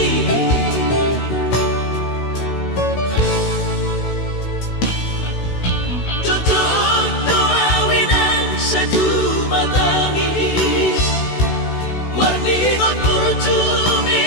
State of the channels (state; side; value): late; right; 16 ms